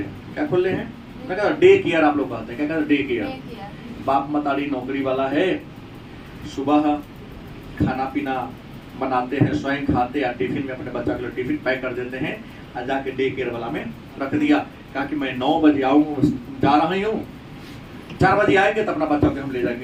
क्या खुले हैं? मैं कहता डे केयर, आप लोग कहते हैं। क्या कहते हैं? Day care. बाप मतारी नौकरी वाला है, सुबह खाना पीना बनाते हैं, स्वयं खाते, या टिफिन में अपने बच्चा के लिए टिफिन पैक कर देते हैं, और जाके डे केयर वाला में रख दिया। कहा कि मैं 9 बजे आऊँ, जा रहा हूँ, 4 बजे आएंगे तो अपना बच्चा को हम ले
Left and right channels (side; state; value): both; identical; correlation 1.00